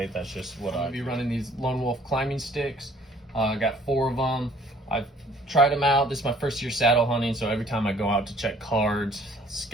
That's just what I'll be running. These Lone Wolf climbing sticks. I got 4 of them. I've tried them out. This is my first year saddle hunting, so every time I go out to check cards,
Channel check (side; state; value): both; normal; correlation 0.57